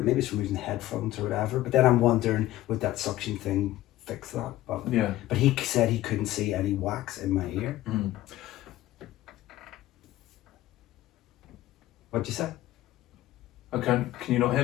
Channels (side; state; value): right; quieter; 15.3 dB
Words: from using headphones or whatever. But then I'm wondering, would that suction thing fix that? But he said he couldn't see any wax in my ear. What'd you say? Okay, can you not